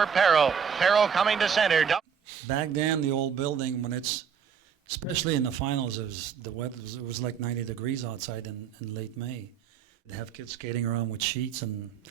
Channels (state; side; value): quieter; left; 7.2 dB